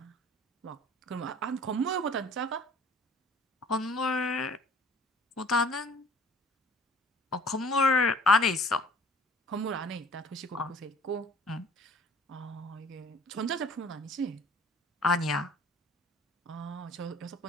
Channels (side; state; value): both; normal; correlation 0.51